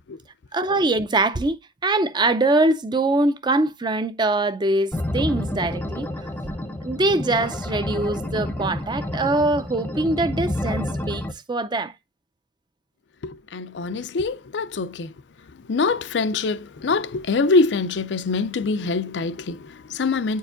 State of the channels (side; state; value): both; normal; correlation 0.39